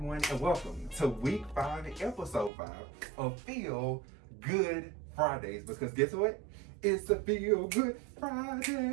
and welcome to week 5, episode 5 of Feel Good Fridays, because guess what? It's a Feel Good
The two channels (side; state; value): left; drops out; at 2.5 s